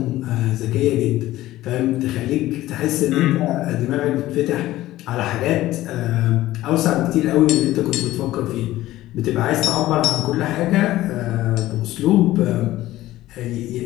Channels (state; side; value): quieter; right; 15.7 dB